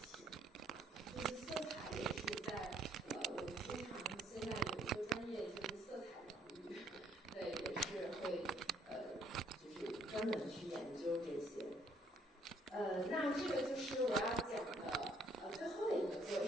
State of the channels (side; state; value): both; normal; correlation 0.66